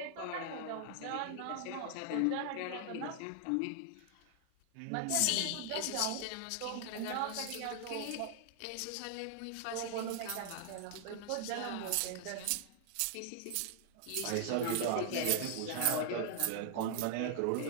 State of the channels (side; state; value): both; different; correlation 0.00